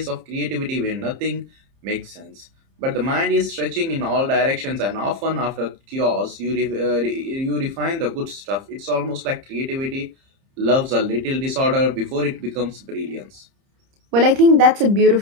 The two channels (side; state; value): left; late; 30 ms